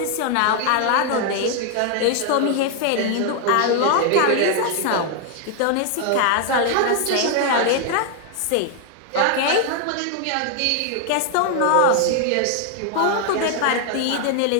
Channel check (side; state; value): both; different; correlation 0.00